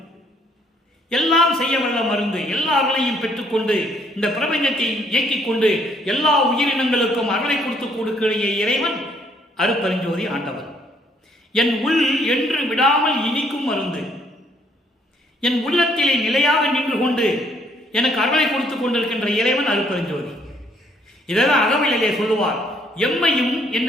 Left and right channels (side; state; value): both; normal; correlation 0.66